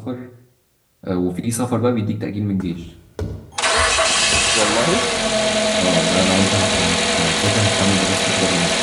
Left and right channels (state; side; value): identical; both; correlation 1.00